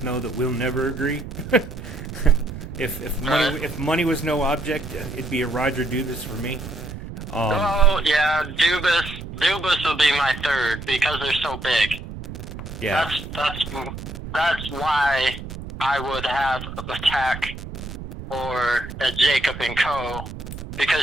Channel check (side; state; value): right; noise; rumble, 10 dB below the sound